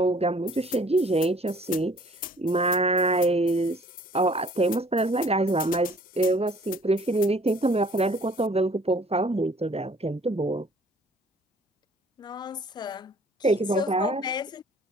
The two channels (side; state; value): both; normal; correlation 0.55